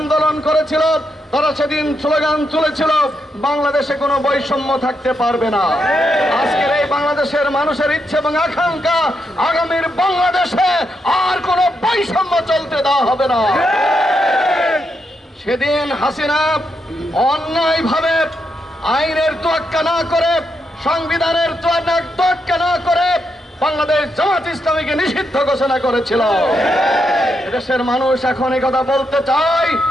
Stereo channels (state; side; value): normal; both; correlation 0.82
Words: করেছিল, তারা সেদিন স্লোগান তুলেছিল, বাংলাদেশে কোনো বৈষম্য থাকতে পারবে না। আজকের এই বাংলাদেশের মানুষের ইচ্ছে এবং আকাঙ্ক্ষা, আগামীর বাংলাদেশে আর কোনো বৈষম্য চলতে দেওয়া হবে না। সেদিন হাসিনা অন্যায়ভাবে আইনের তোয়াক্কা না করে, সংবিধানের তোয়াক্কা না করে বাংলাদেশ জামাত ইসলামীকে নিষিদ্ধ ঘোষণা করেছিল। দেশের মানুষ এখন এই কথা বলতে চায়,